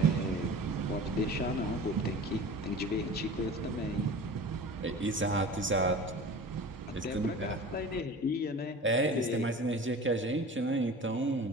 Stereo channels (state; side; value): normal; both; correlation 0.37